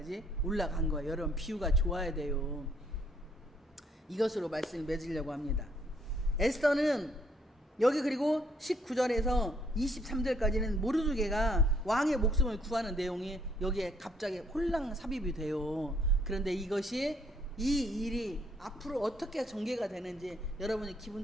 올라간 거예요. 여러분 비유가 좋아야 돼요. 이것으로 말씀을 맺으려고 합니다. 에스더는 여기 그리고 19절에서 23절까지는 모르드게가 왕의 목숨을 구하는 내용이 여기에 갑자기 홀랑 삽입이 돼요. 그런데 이것이 이 일이 앞으로 어떻게 전개가 되는지 여러분이 기분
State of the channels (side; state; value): both; normal; correlation 0.67